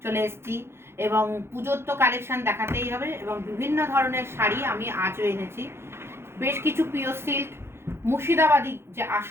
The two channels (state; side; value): late; left; 0.12 ms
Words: চলে এসেছি এবং পুজোর তো কালেকশন দেখাতেই হবে এবং বিভিন্ন ধরনের শাড়ি আমি আজও এনেছি। বেশ কিছু পিওর সিল্ক, মুর্শিদাবাদী যে